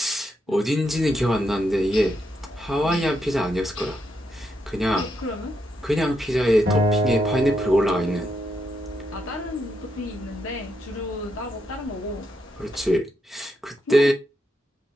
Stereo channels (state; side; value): normal; both; correlation 0.81